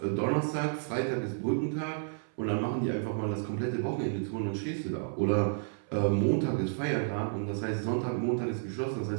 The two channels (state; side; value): silent; left; 57 dB below the other